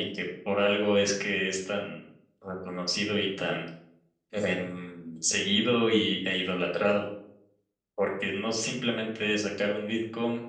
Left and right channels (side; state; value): both; identical; correlation 1.00